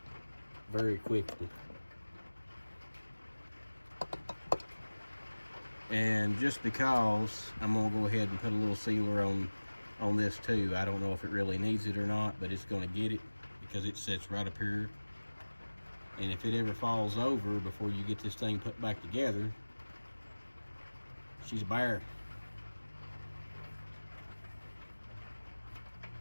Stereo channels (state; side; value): inverted; both; correlation -1.00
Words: very quickly. And just because, I'm gonna go ahead and put a little sealer on this too. I don't know if it really needs it or not, but it's gonna get it because it sits right up here. And if it ever falls over before you get this thing put back together, she's a bear.